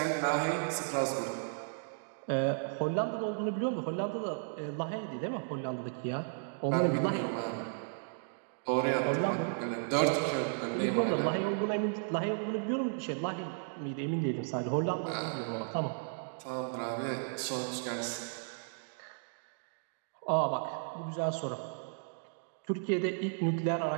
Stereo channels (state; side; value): silent; left; digital silence